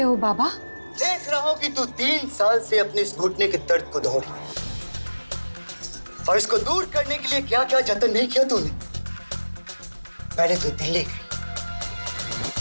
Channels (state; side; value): inverted; both; correlation -1.00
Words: हो बाबा? देख रहा हूं कि तू 3 साल से अपने इस घुटने के दर्द को दौड़ रही है, और इसको दूर करने के लिए क्या क्या जतन नहीं किया तूने। पहले तो दिल्ली गई,